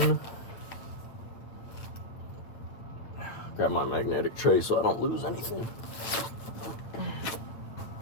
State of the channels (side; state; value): right; late; 8.2 ms